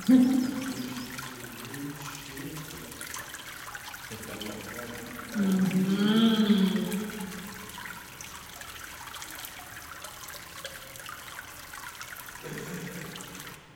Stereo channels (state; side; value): identical; both; correlation 1.00